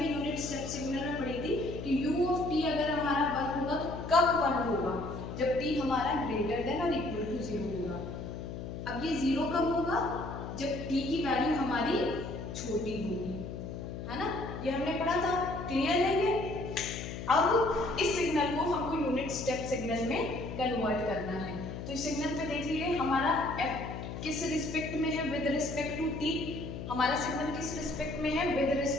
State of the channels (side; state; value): left; noise; hum, 7 dB below the sound